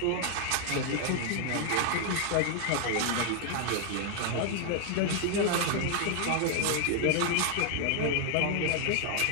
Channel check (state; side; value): different; both; correlation 0.00